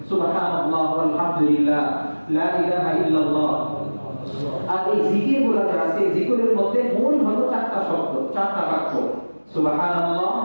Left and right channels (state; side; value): inverted; both; correlation -1.00